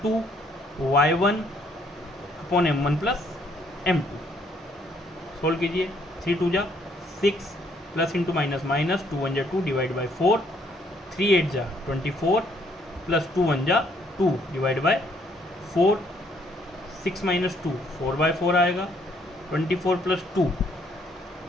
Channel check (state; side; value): normal; both; correlation 0.67